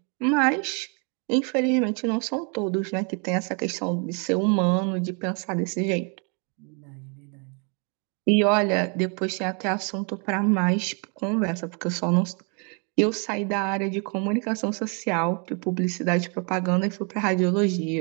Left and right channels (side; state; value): left; quieter; 36.6 dB